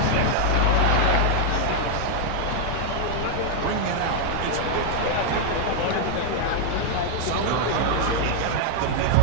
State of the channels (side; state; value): both; different; correlation 0.00